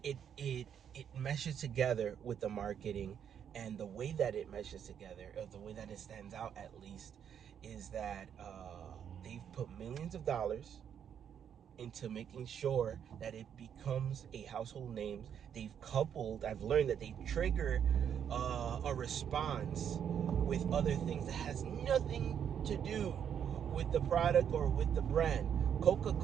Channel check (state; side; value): quieter; left; 8.5 dB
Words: It meshes together with the marketing, and the way that it meshes together, or the way that it stands out at least, is that they've put millions of dollars into making sure that it becomes a household name. I've learned that they trigger a response with other things that has nothing to do with the product or with the brand.